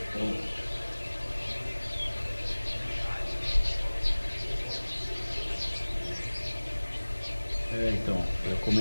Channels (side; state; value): both; inverted; correlation -1.00